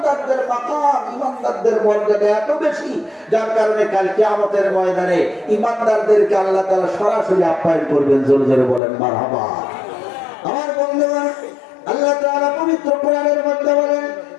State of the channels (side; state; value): right; drops out; at 8.8 s